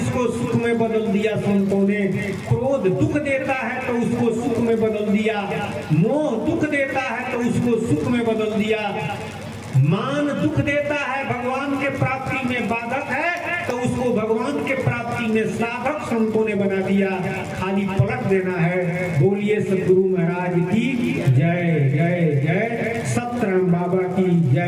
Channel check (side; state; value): both; identical; correlation 1.00